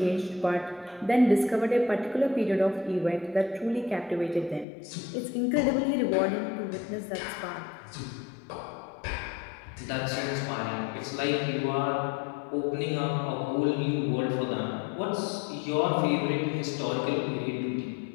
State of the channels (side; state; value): right; drops out; at 4.7 s